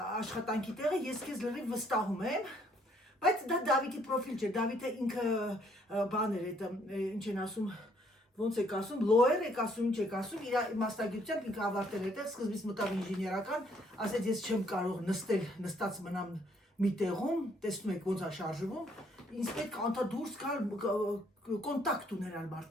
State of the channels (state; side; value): normal; both; correlation 0.66